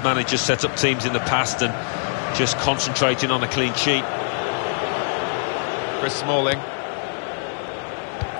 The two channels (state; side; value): silent; right; 61 dB below the other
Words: manager set up teams in the past and just concentrating on a clean sheet. Chris Smalling.